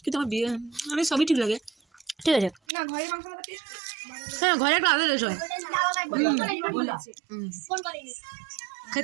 কিন্তু আমার বিয়ে আমি সবই ঠিক লাগে। ঠিক আছে। না ঘরে মাংস মাখাতে হ্যাঁ ঘরে একটা আলাদা টেস্ট হয়। ফোন করেনি।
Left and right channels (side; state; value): left; drops out; at 2.6 s